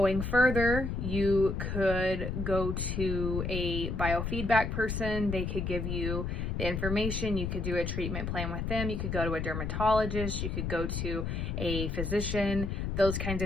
further, you could go to a biofeedback person. They could give you the information. You could do a treatment plan with them. You could go to a dermatologist. You could go to a physician, those kinds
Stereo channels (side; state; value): left; noise; rumble, 2 dB below the sound